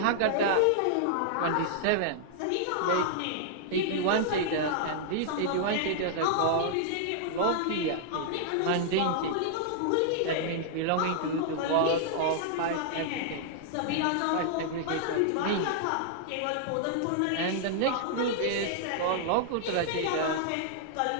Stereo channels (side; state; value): both; different; correlation -0.01